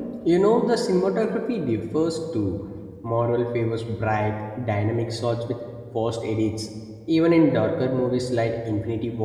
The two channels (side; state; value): both; identical; correlation 1.00